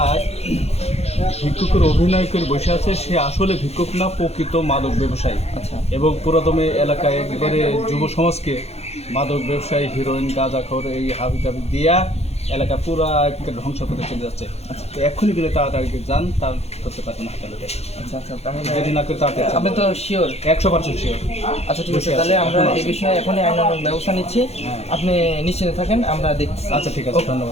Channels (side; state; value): right; late; 0.31 ms